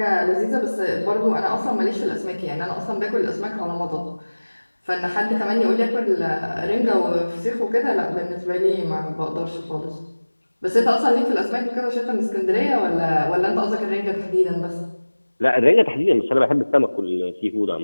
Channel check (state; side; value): inverted; both; correlation -1.00